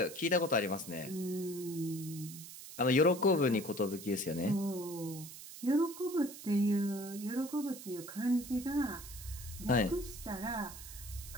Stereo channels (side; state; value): right; noise; hiss, 13 dB below the sound